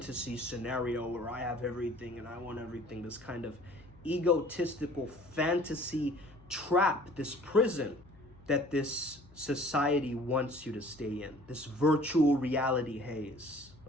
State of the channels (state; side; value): noise; left; hum, 24 dB below the sound